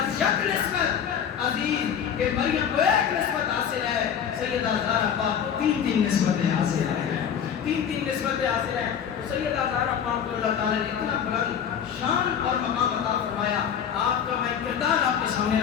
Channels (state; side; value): quieter; right; 8.2 dB